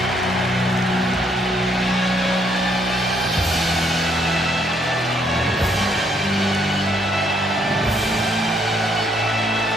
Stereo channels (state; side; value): normal; both; correlation 0.70